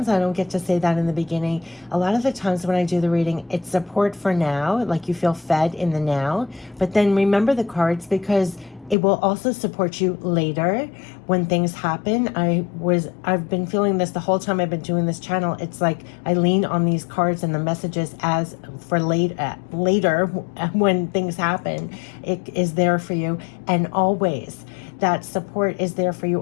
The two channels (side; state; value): right; drops out; at 9.0 s